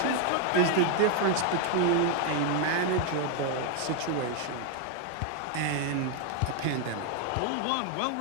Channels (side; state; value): both; different; correlation 0.01